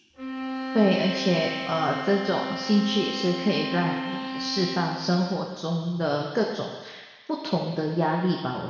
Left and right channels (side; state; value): both; identical; correlation 1.00